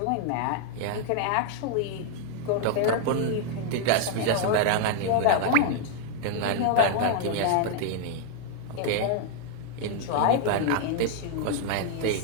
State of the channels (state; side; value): different; both; correlation 0.00